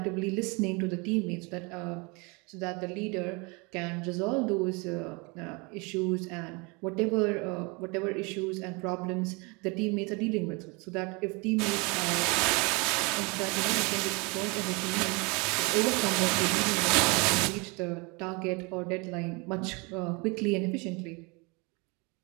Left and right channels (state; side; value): quieter; left; 29.1 dB